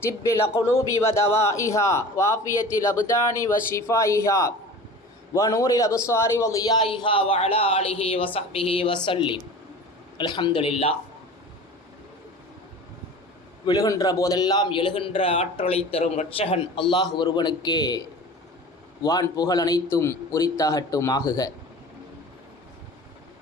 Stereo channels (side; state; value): both; normal; correlation 0.38